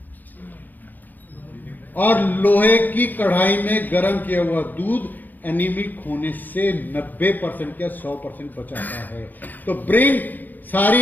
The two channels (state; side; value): late; right; 0.085 ms